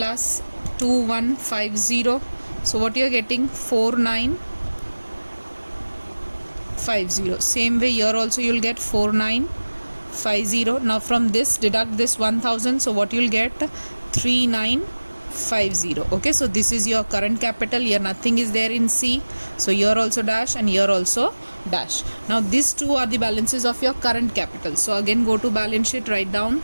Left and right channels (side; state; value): both; inverted; correlation -1.00